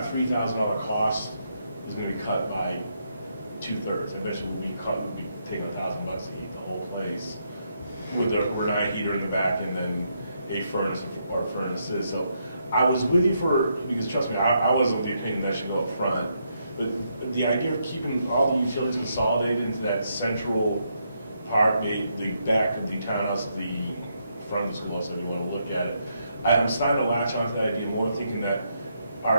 $3,000 cost is gonna be cut by 2/3. Eventually we'll be taking $1,000 to heat the whole place with a Renai heater in the back and then a furnace or furnaces. So I was with you because trust me, I wasn't of the opinion that should go up front. But the idea of keeping all the utilities consolidated into that central part, the back of the townhouse, the front of the schoolhouse, if you want to look at it, I'm starting to latch onto that idea more, thinking that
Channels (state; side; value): inverted; both; correlation -0.78